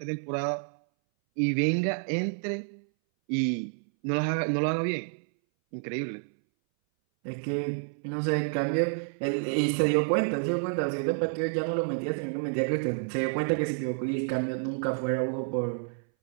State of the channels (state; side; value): silent; left; 58 dB below the other